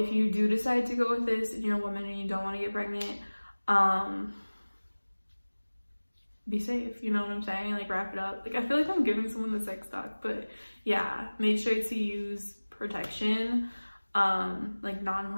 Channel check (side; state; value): both; inverted; correlation -1.00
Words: you do decide to go with this and you're a woman and you don't want to get pregnant, be safe, you know what I'm saying? Like, wrap it up. Like, I feel like I'm giving someone the sex talk, but yeah, make sure to use protection, like